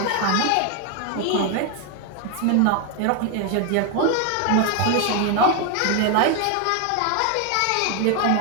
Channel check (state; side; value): different; both; correlation 0.01